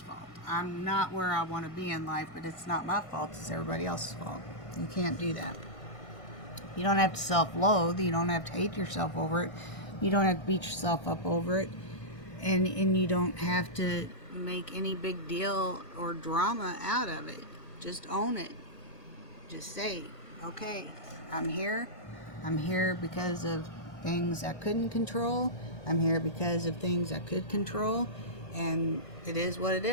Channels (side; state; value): right; late; 1.6 ms